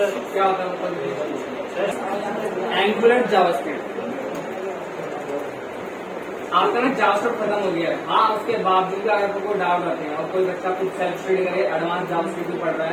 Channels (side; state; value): both; identical; correlation 1.00